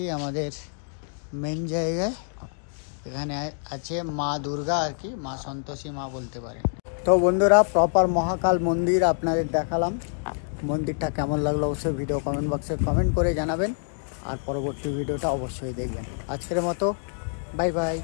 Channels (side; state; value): right; silent; digital silence